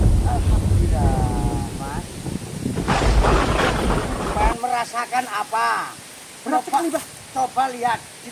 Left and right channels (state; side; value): identical; both; correlation 1.00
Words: Alhamdulillah, Mas. Pengen merasakan apa? Berat sekali, Mbak. Coba lihat di